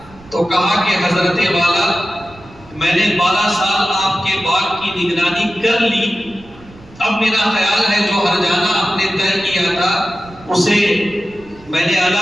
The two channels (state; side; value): noise; right; rumble, 23 dB below the sound